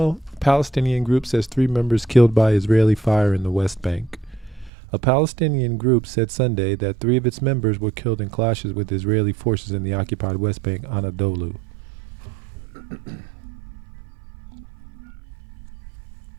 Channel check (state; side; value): drops out; left; at 4.7 s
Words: Palestinian group says 3 members killed by Israeli fire in the West Bank. A Palestinian group said Sunday that 3 of its members were killed in clashes with Israeli forces in the occupied West Bank, Anadolu.